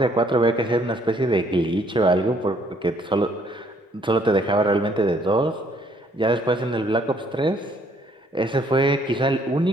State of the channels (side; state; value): both; normal; correlation 0.65